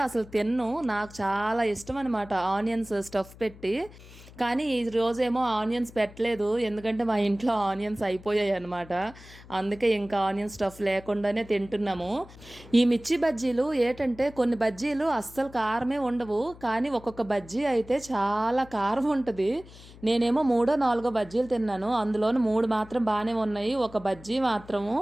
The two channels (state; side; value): noise; left; hum, 20 dB below the sound